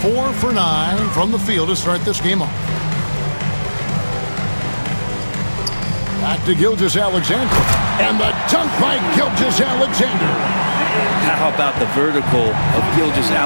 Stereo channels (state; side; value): inverted; both; correlation -1.00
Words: for 9 from the field to start this game off. Back to Gilgeous-Alexander. And the dunk by Gilgeous-Alexander. How about the vertical of